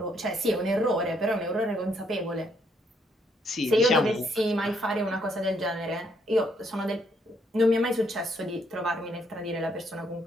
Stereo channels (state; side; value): normal; both; correlation 0.72